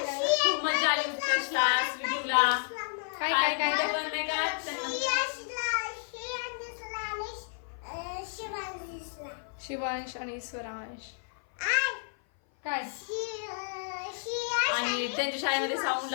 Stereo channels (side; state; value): right; silent; 55 dB below the other